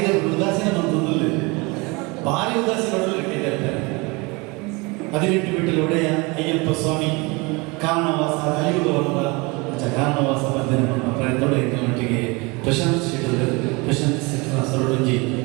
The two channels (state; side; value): quieter; left; 26.6 dB